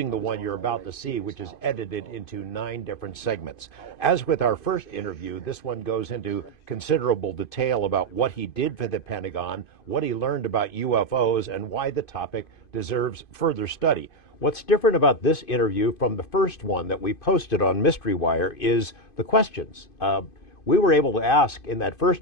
the one you're about to see, which is edited into 9 different segments. As with our first interview, this one goes into considerable detail about what he did for the Pentagon, what he learned about UFOs, and why the topic deserves further study. What's different about this interview from the first one that we posted on Mystery Wire is the questions. We were able to ask in that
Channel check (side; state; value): right; late; 2.5 ms